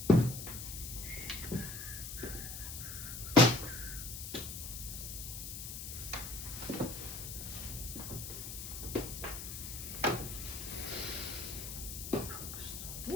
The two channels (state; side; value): noise; left; hiss, 7 dB below the sound